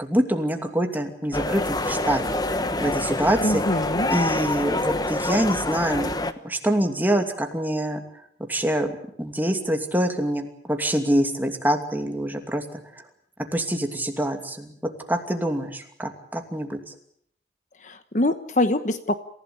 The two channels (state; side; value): normal; both; correlation 0.65